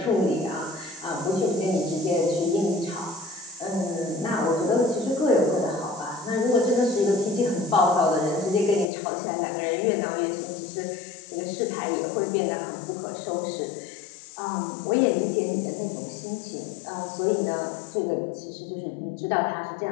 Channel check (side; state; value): right; drops out; at 8.8 s